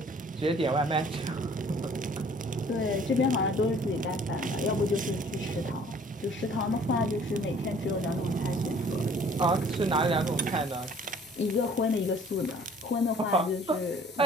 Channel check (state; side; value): normal; both; correlation 0.54